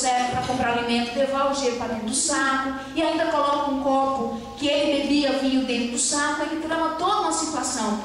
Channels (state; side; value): identical; both; correlation 1.00